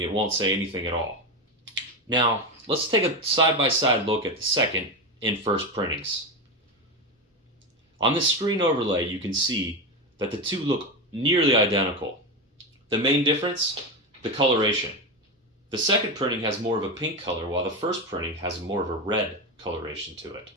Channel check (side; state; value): both; normal; correlation 0.16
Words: it won't say anything at all. Now, let's take a side-by-side look at the second and first printings. On this screen overlay, you can see that the two look nearly identical. The main difference? The coloration. The second printing has more of a pink color, while the first printing has more of a red coloration to it.